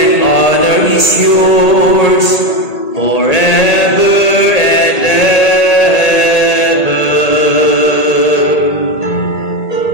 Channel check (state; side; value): late; right; 1.8 ms